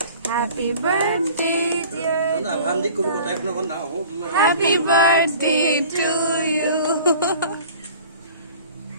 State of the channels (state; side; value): inverted; both; correlation -0.45